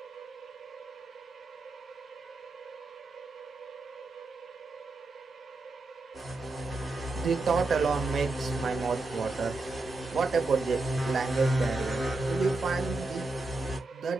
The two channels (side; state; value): left; quieter; 3.2 dB